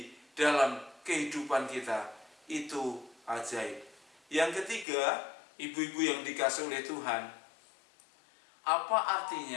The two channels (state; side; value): drops out; right; at 4.9 s